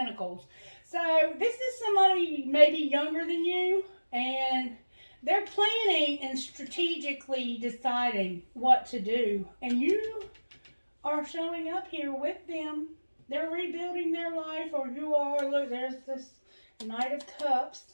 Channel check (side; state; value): both; inverted; correlation -1.00